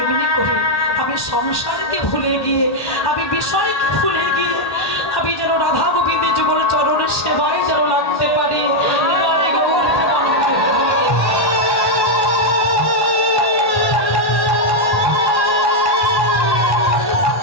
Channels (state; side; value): late; right; 1.1 ms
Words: করে আমি সংসারকে ভুলে গিয়ে, আমি বিষয়কে ভুলে গিয়ে, আমি যেন রাধা গোবিন্দের যুগল চরণের সেবায় যেন লাগতে পারি।